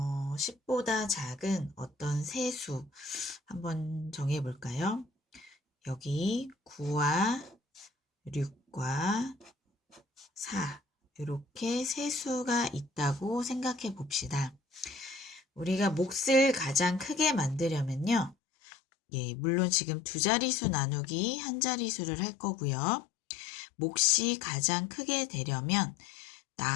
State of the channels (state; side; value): drops out; right; at 18.4 s